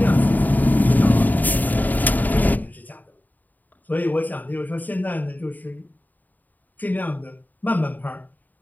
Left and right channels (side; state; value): right; late; 0.084 ms